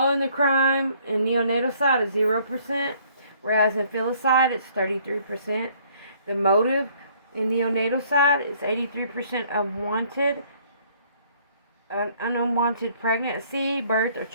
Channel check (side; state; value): both; inverted; correlation -0.61